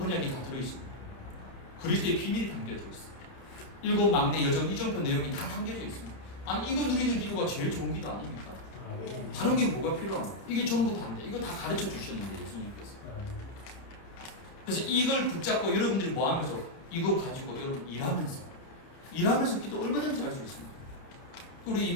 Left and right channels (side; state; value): right; late; 30 ms